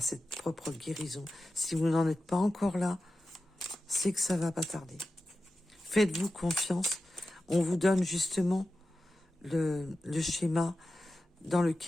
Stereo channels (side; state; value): both; normal; correlation 0.93